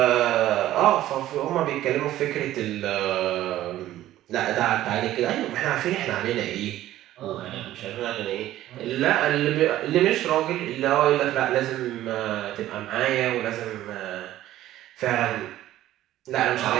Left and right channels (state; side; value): quieter; left; 14.0 dB